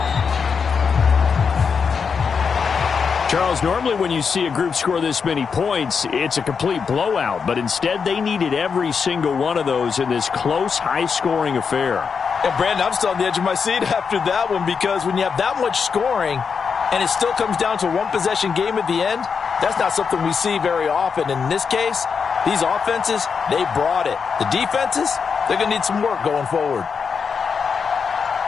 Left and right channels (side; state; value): right; quieter; 5.9 dB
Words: Charles, normally when you see a group score this many points, it's a complete blowout. But instead, they needed every single one of those in this close, high-scoring affair. And, Brandon, I'm still on the edge of my seat after that one because when you have that much scoring and it still comes down to a one-possession game at the end, that's not something we see very often. And in this case, these offenses, they brought it. The defenses, they're going to need some work going forward.